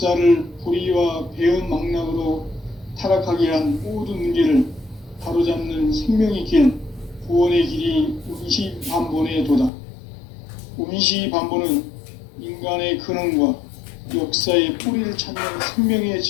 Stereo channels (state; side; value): drops out; right; at 9.7 s